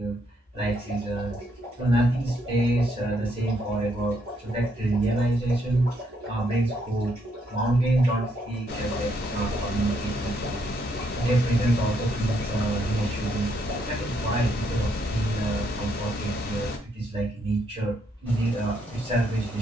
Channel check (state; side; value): normal; both; correlation 0.74